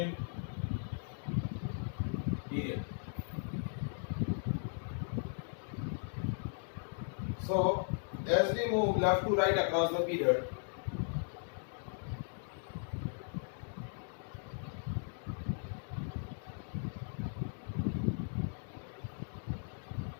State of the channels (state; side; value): silent; right; digital silence